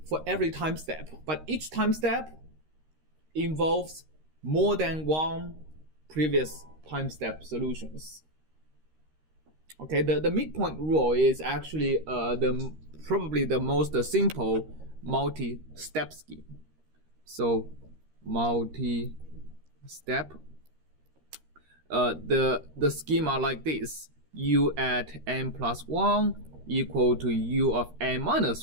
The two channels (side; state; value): left; late; 13 ms